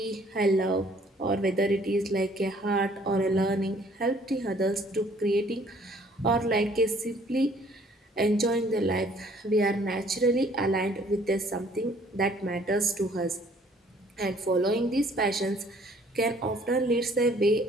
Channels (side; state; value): both; normal; correlation 0.59